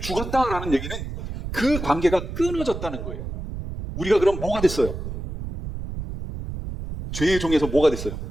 얘기는 그 관계가 끊어졌다는 거예요. 우리가 그럼 뭐가 됐어요? 죄의 종에서 뭐가 됐어요?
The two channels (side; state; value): right; noise; rumble, 7 dB below the sound